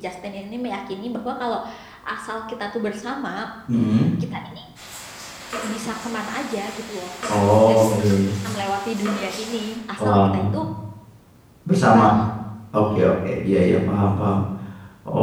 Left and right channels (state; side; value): identical; both; correlation 1.00